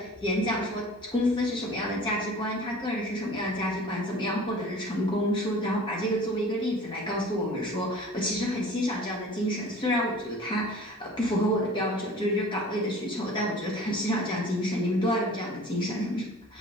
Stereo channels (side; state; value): both; normal; correlation 0.44